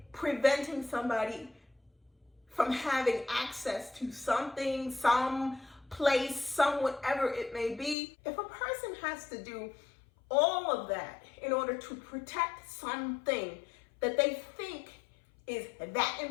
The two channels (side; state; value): right; drops out; at 8.0 s